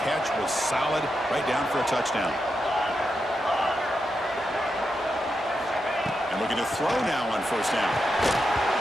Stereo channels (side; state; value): both; normal; correlation 0.86